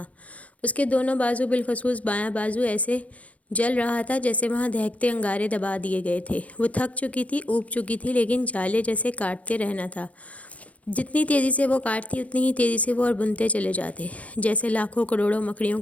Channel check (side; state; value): right; late; 0.066 ms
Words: اس کے دونوں بازو، بالخصوص بایاں بازو، ایسے جل رہا تھا جیسے وہاں دہکتے انگارے دبا دیے گئے تھے۔ وہ تھک چکی تھی، اوب چکی تھی، لیکن جالے جیسے کاٹتے رہنا تھا۔ جتنی تیزی سے وہ کاٹتی اتنی ہی تیزی سے وہ اور بنتے چلے جاتے، جیسے لاکھوں کروڑوں مکڑیوں